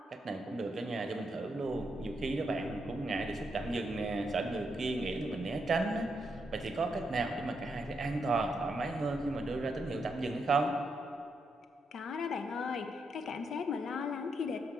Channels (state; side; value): normal; both; correlation 0.81